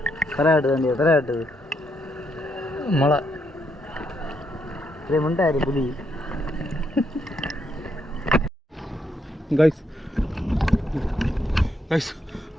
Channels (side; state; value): both; normal; correlation 0.77